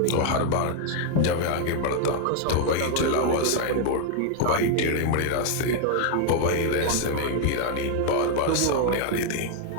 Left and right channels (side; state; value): both; different; correlation 0.00